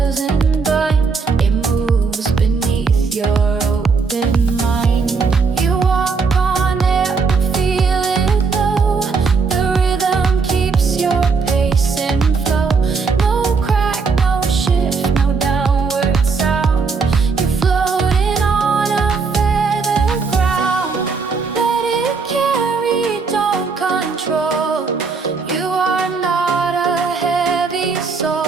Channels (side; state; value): left; quieter; 4.9 dB